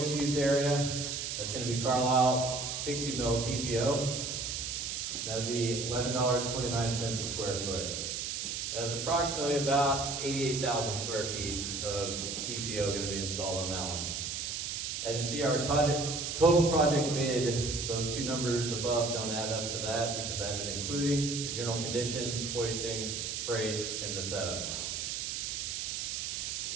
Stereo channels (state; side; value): noise; right; hiss, 3 dB below the sound